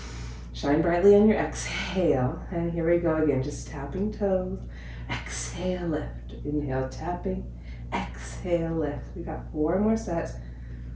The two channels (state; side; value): identical; both; correlation 1.00